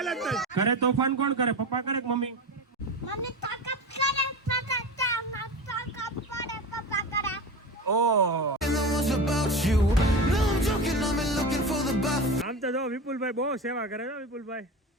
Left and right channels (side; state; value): both; normal; correlation 0.26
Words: જ કરે। તોફાન કોણ કરે? પપ્પા કરે કે મમ્મી? મમ્મી તાકાત કરે, પપ્પા કરે। ઓહ આમ તો જો વિપુલભાઈ બહુ સેવા કરે છે વિપુલભાઈ।